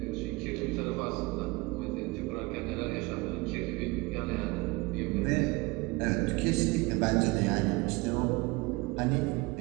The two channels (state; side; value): quieter; left; 24.8 dB